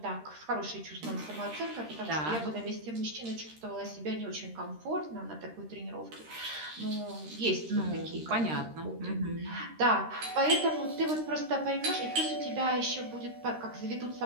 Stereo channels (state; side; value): late; left; 13 ms